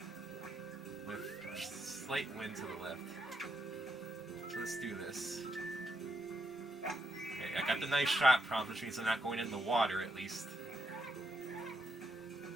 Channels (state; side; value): normal; both; correlation 0.80